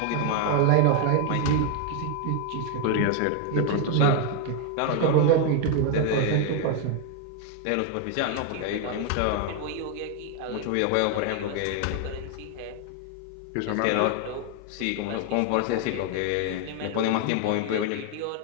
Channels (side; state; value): both; different; correlation 0.01